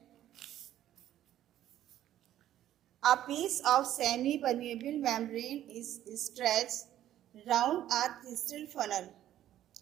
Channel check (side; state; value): left; quieter; 12.3 dB